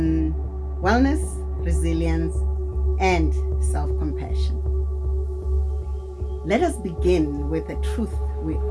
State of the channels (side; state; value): both; identical; correlation 1.00